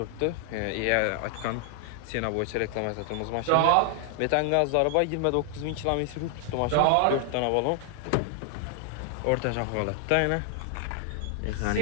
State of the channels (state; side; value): different; both; correlation 0.00